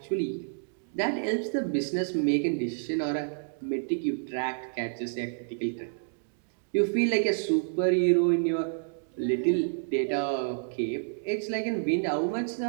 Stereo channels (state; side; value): silent; left; digital silence